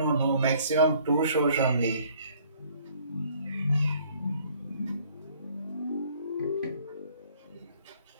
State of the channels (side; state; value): both; inverted; correlation -0.60